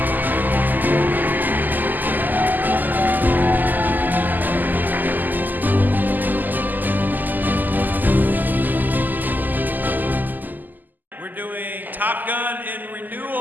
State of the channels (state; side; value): late; left; 0.086 ms